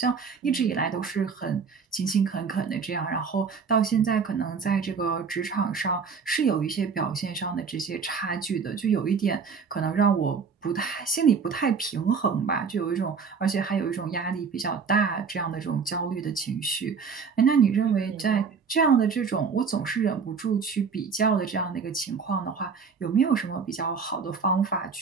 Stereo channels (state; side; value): quieter; left; 5.6 dB